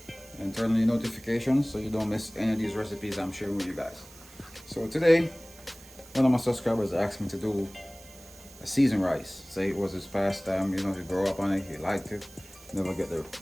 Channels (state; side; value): noise; right; hiss, 21 dB below the sound